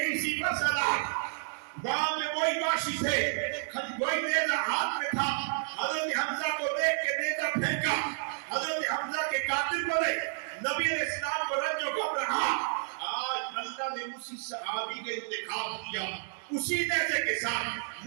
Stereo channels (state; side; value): silent; left; digital silence